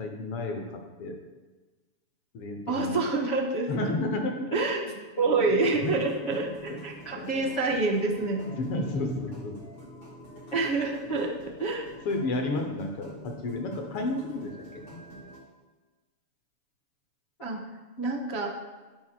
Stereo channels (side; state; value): right; late; 7.1 ms